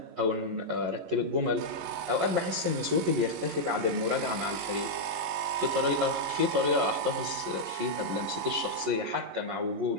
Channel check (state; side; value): late; left; 11 ms